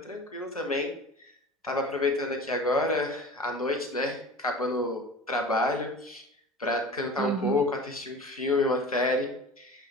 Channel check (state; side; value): normal; both; correlation 0.38